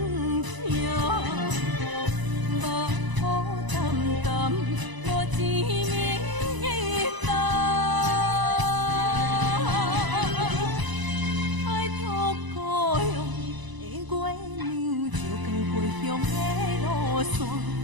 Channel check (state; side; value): late; left; 1.0 ms